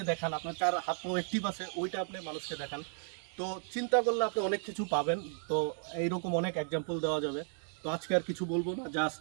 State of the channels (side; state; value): left; silent; 55 dB below the other